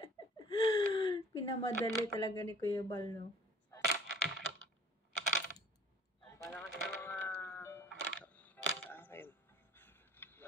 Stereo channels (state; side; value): normal; both; correlation 0.51